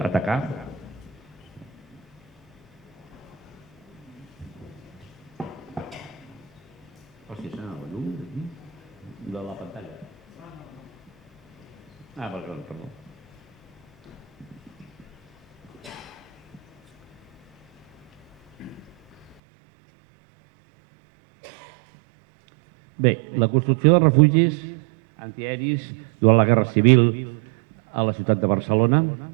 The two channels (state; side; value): drops out; left; at 19.4 s